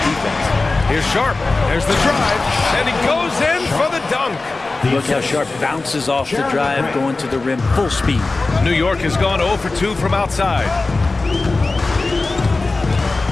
Here's Sharp. There's the drive. And he goes in for the dunk. Look how Sharp bounces off the drive, going to the rim full speed. New York has gone 0 for 2 from outside.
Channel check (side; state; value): right; quieter; 3.5 dB